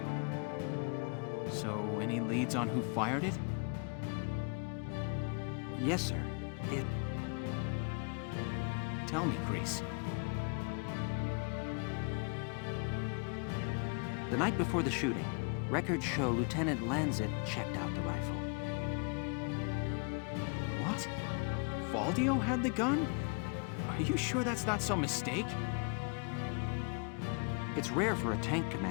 So, any leads on who fired it? Yes, sir. Tell me, Grease. The night before the shooting, records show Lieutenant Lancet checked out the rifle. What? Valdio had the gun? Are you sure that's not some mistake? It's rare for a tank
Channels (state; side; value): quieter; right; 37.2 dB